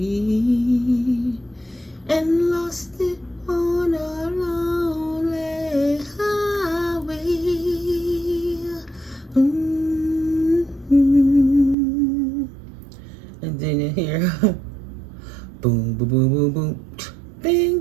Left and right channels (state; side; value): drops out; left; at 11.8 s